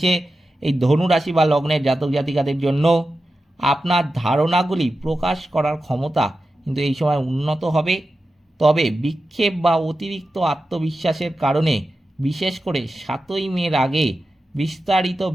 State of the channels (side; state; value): both; normal; correlation 0.92